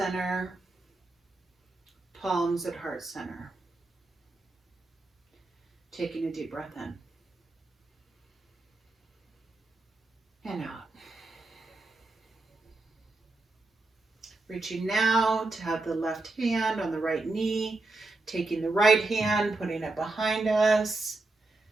palms at heart center. Taking a deep breath in and out. Reaching now to have the left hand on the right knee, taking the right hand, putting it behind us,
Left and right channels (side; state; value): left; quieter; 3.1 dB